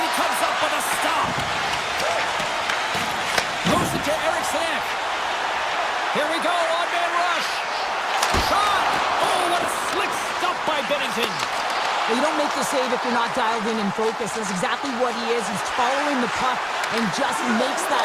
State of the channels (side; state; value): both; identical; correlation 1.00